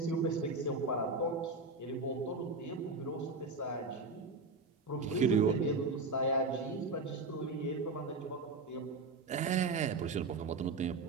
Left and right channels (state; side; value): quieter; left; 3.6 dB